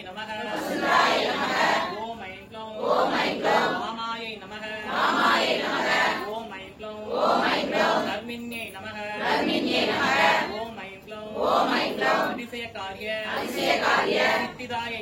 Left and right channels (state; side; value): identical; both; correlation 1.00